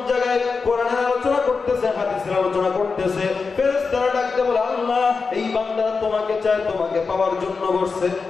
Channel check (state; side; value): quieter; right; 4.7 dB